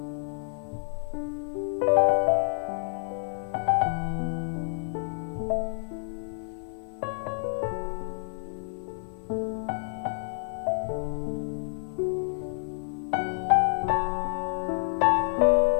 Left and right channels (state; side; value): silent; right; 59 dB below the other